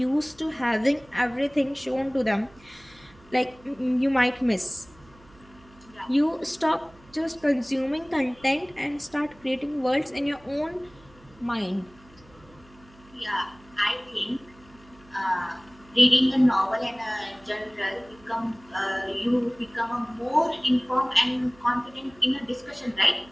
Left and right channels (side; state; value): right; noise; hum, 26 dB below the sound